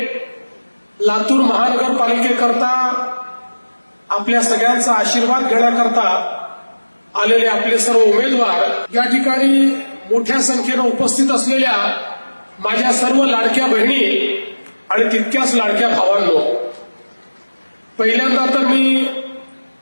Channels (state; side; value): inverted; both; correlation -1.00